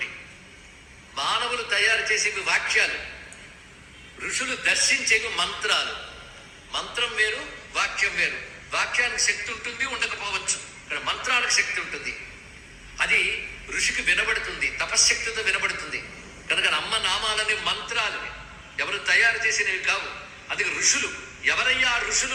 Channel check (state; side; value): identical; both; correlation 1.00